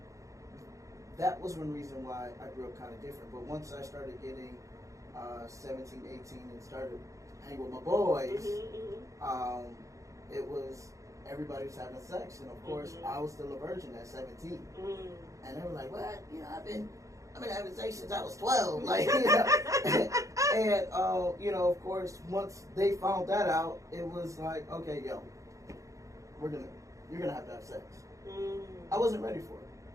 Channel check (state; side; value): late; left; 0.15 ms